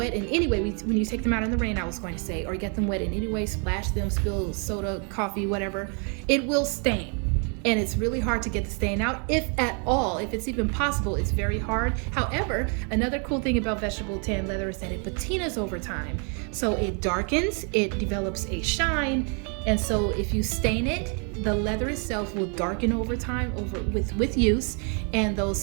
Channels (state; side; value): quieter; left; 38.5 dB